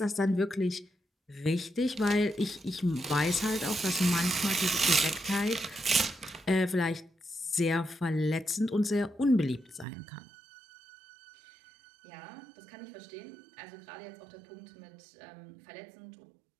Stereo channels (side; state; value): left; drops out; at 9.9 s